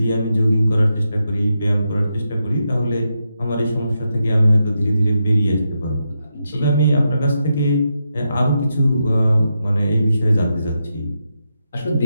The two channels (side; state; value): both; inverted; correlation -0.85